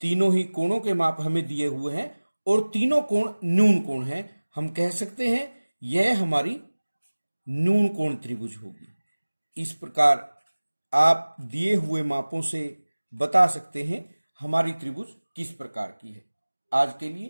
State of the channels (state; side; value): inverted; both; correlation -1.00